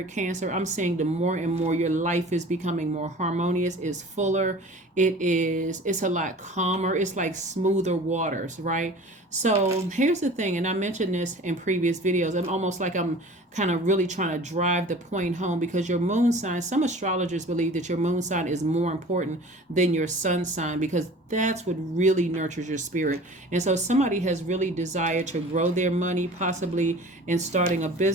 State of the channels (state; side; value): normal; both; correlation 0.43